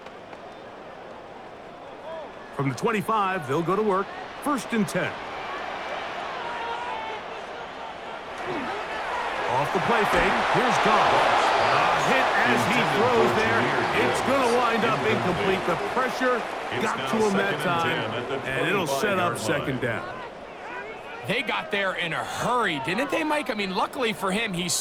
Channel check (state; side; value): identical; both; correlation 1.00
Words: From the 25, they'll go to work. 1st and 10. Off the play fake, here's Goff. A hit as he throws there. It's going to wind up incomplete. The pressure got to him that time, and it'll set up 2nd down. They got there in a hurry, didn't they, Mike? I mean, luckily for him, he